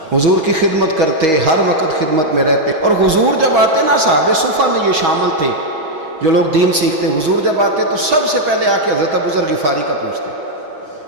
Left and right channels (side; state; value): left; late; 6.3 ms